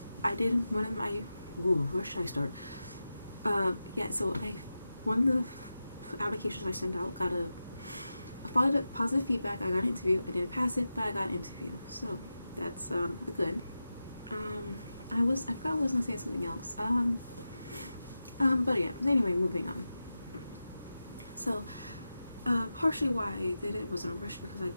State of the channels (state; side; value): inverted; both; correlation -0.93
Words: did one of my, where should I start? Yeah, so one of the applications I sent out got I followed up positive feedback. I got an interview. I didn't pass it, but I got an interview, so that's good. I forgot I was gonna say something else. But yeah, anyway, moving on. So, partially why I did it was in a rush because I